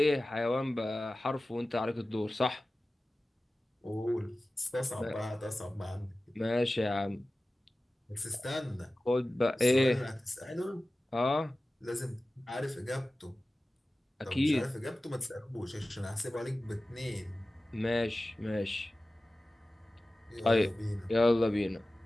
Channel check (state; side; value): normal; both; correlation 0.96